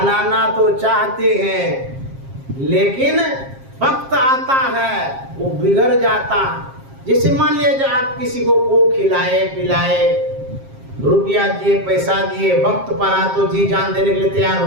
तो चाहते हैं, लेकिन वक्त आता है वो बिगड़ जाता है। जैसे मान लीजिए आप किसी को खिलाए पिलाए, रुपया दिए, पैसा दिए, वक्त पर आ तो जी जान देने के लिए तैयार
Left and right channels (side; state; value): left; late; 7.5 ms